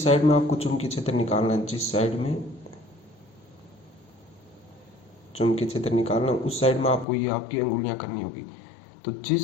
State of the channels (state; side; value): drops out; right; at 7.1 s